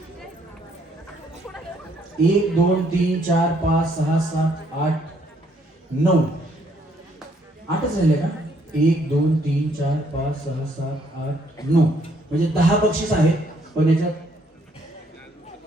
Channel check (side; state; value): both; normal; correlation 0.68